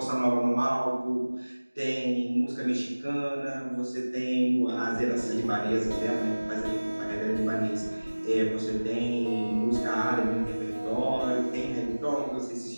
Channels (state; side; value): inverted; both; correlation -1.00